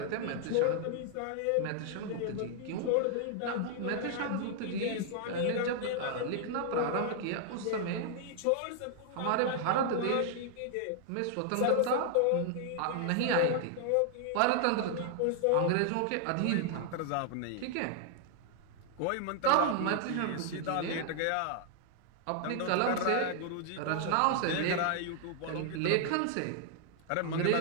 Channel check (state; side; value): different; both; correlation 0.00